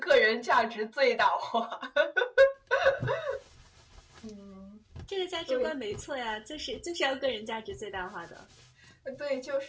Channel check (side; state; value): both; identical; correlation 1.00